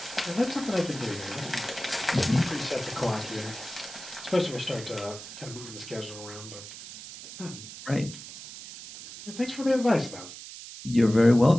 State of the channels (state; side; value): noise; right; hiss, 13 dB below the sound